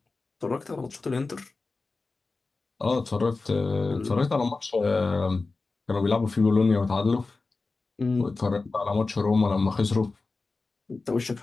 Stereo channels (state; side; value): quieter; right; 3.8 dB